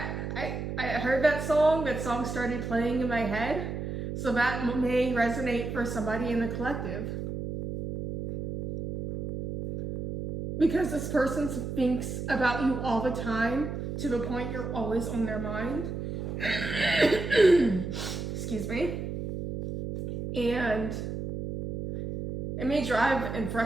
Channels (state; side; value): noise; right; hum, 4 dB below the sound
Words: I heard that song started playing in my head, so that may resonate for somebody in the collective. Because this person thinks about you all the time, to the point you're always on their mind. Excuse me. And it may drive and